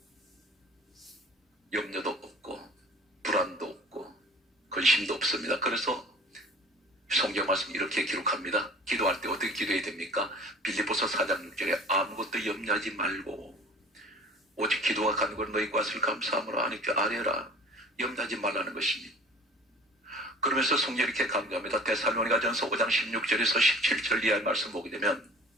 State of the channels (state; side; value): normal; both; correlation 0.45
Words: 염려도 없고 불안도 없고 근심도 없습니다. 그래서 성경 말씀 이렇게 기록합니다. 기도할 때 어떻게 기도해야 됩니까? 빌립보서 4장 6절에 아무것도 염려하지 말고 오직 기도와 간구로 너희 것을 감사함으로 하나님께 아뢰라. 염려하지 말라는 것입니다. 그러면서 성경이 이렇게 강조합니다. 데살로니가전서 5장 16절에서 17절 이하의 말씀 보게 되면